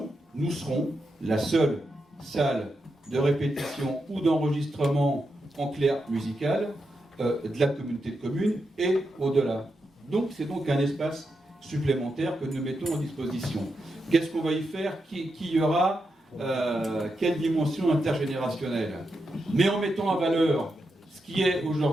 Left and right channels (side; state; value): both; normal; correlation 0.86